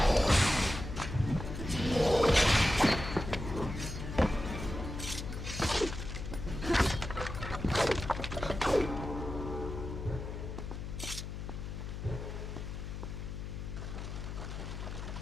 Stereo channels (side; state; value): left; noise; hum, 7 dB below the sound